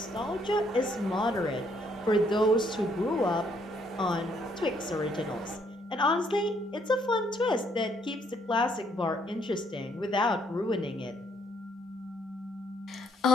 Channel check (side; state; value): both; normal; correlation 0.69